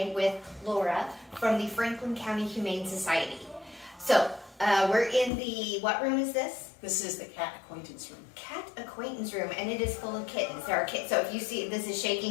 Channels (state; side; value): drops out; right; at 5.3 s